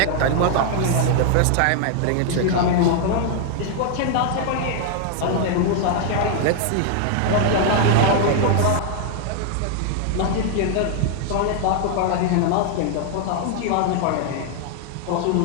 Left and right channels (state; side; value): different; both; correlation 0.00